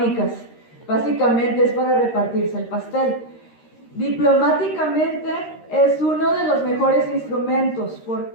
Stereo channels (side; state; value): right; late; 13 ms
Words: Básicamente es para repartirse el pastel. Diplomáticamente es uno de los mejores instrumentos.